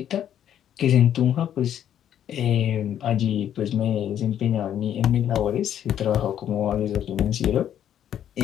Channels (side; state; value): right; quieter; 10.2 dB